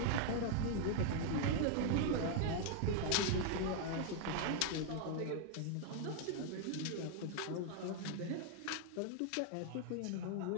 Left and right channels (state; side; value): different; both; correlation 0.00